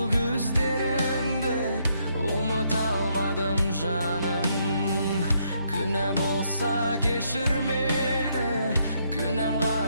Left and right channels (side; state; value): both; inverted; correlation -0.74